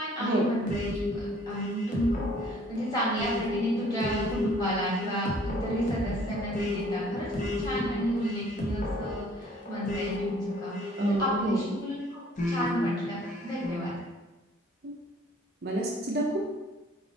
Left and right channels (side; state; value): both; normal; correlation 0.57